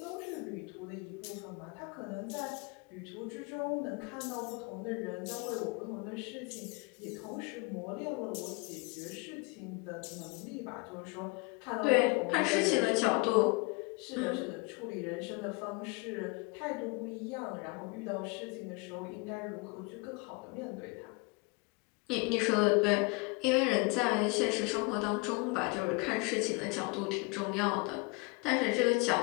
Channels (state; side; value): quieter; right; 28.2 dB